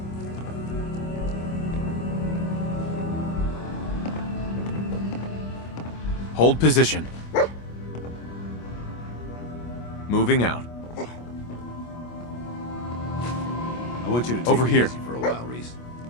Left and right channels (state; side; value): late; right; 25 ms